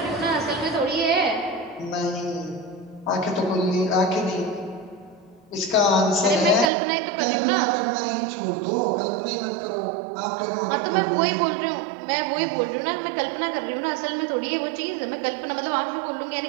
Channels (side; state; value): left; drops out; at 6.7 s